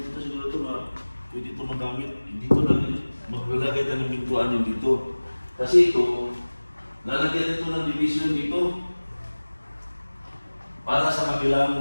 siguro ito pwede ito magamit. Dito lang, maglalagay tayo ng pintuan yung dito. Kasi ito, lalagyan ito ng division dito para sa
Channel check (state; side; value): inverted; both; correlation -1.00